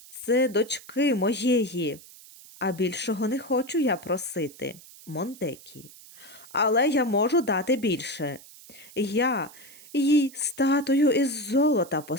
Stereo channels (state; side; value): noise; right; hiss, 20 dB below the sound